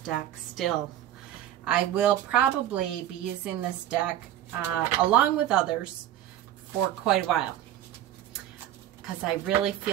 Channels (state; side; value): quieter; left; 11.8 dB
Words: still. I will probably be using this deck along with others for quite a while, because I really